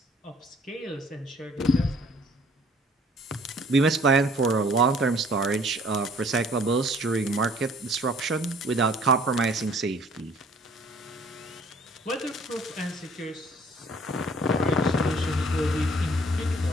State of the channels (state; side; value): normal; both; correlation 0.56